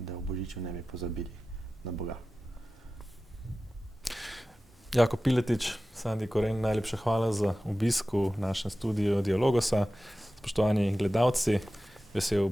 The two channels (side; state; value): both; normal; correlation 0.95